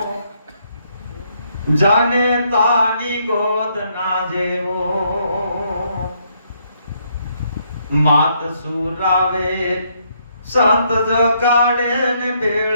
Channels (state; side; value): inverted; both; correlation -0.72